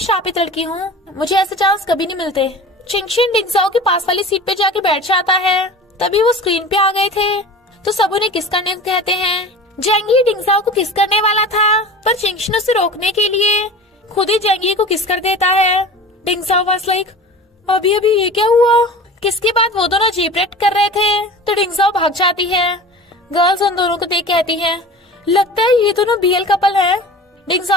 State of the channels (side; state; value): both; normal; correlation 0.37